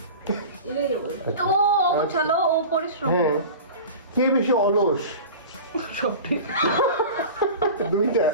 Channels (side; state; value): both; inverted; correlation -0.34